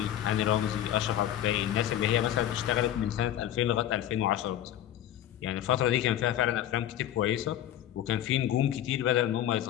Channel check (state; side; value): quieter; right; 11.7 dB